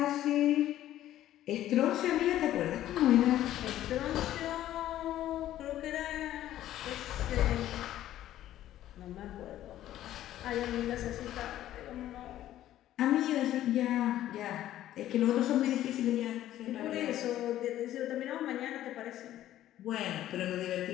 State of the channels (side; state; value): right; quieter; 13.0 dB